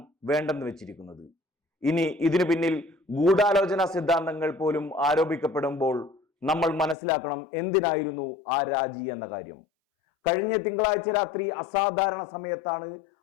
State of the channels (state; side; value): drops out; right; at 7.0 s